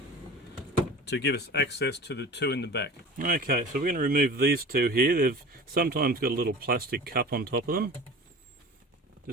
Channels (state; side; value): normal; both; correlation 0.38